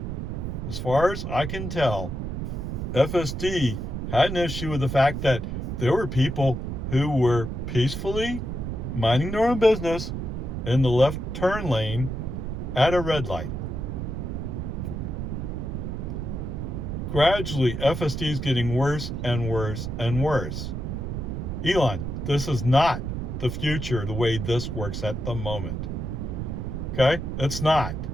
As far as I can tell, FSD had an issue with the fact that there were people who were peacefully minding their own business in the left turn lane at a red light. Gradually, FSD is getting worse and worse and worse. Elon, this is not the future the way this works at the moment. Okay? It's not.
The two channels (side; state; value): right; noise; rumble, 4 dB below the sound